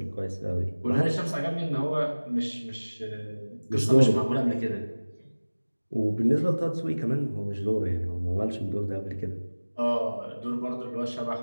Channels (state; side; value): inverted; both; correlation -1.00